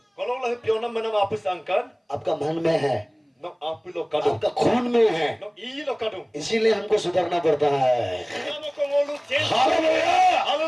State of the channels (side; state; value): both; identical; correlation 1.00